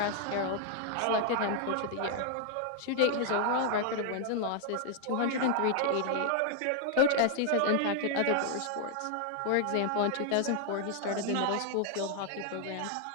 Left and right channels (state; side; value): different; both; correlation 0.00